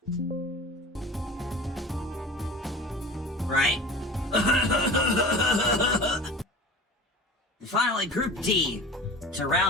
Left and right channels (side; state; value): both; normal; correlation 0.38